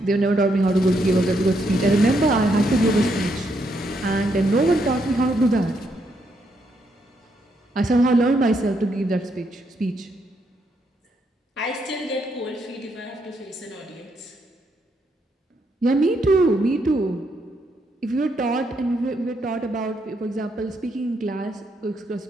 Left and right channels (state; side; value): normal; both; correlation 0.77